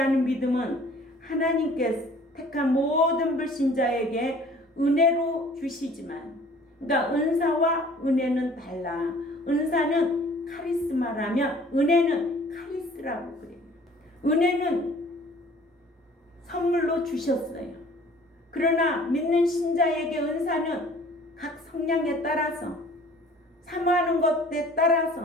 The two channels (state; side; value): normal; both; correlation 0.52